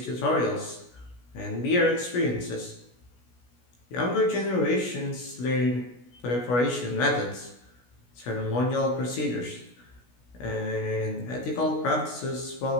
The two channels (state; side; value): late; right; 16 ms